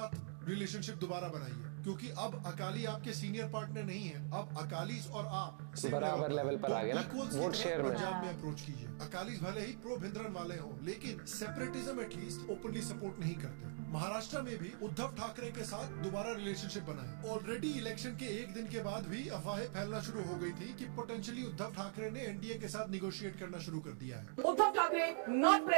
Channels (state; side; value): silent; left; digital silence